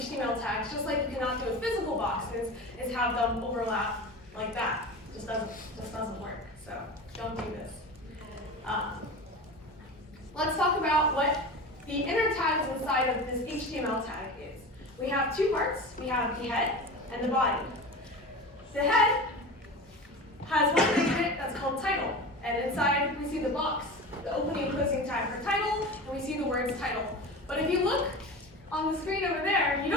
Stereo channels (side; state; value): both; normal; correlation 0.30